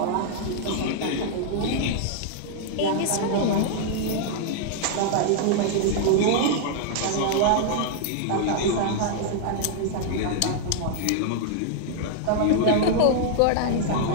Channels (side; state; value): both; different; correlation -0.01